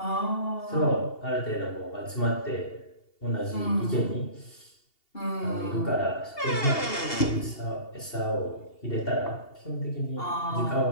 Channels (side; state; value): right; late; 2.8 ms